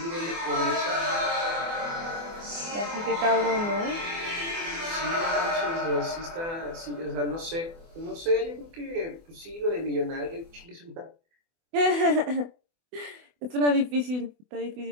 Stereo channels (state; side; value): late; left; 24 ms